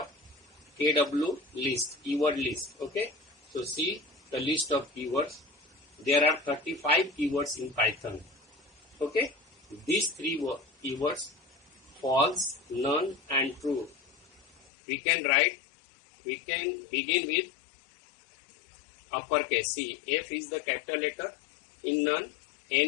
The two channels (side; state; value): right; drops out; at 14.7 s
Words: kw list, keyword list. Okay, so see the list of keywords. There are 35 keywords in Python. Okay, these three keywords: false, none, and true. We can begin with uppercase. See, F is the capital letter, in none